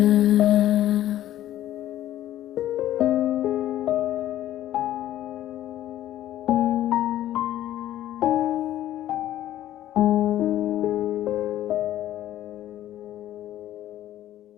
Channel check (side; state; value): right; quieter; 13.0 dB